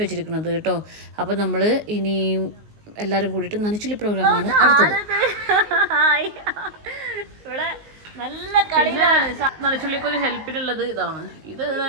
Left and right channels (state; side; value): late; left; 19 ms